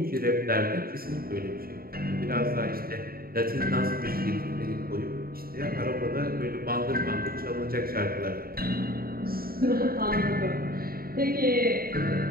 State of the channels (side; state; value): left; late; 0.43 ms